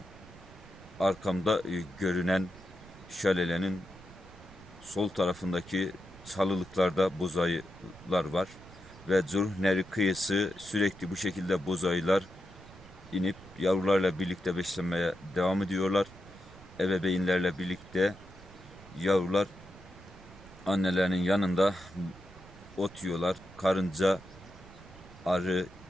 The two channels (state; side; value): noise; right; rumble, 20 dB below the sound